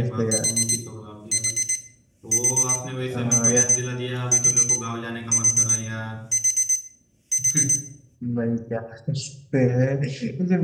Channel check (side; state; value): both; identical; correlation 1.00